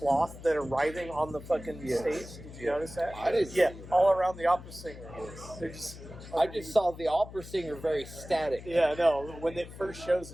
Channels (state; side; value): noise; left; hum, 15 dB below the sound